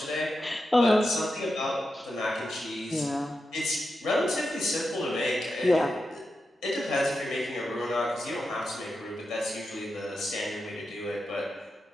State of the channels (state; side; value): normal; both; correlation 0.89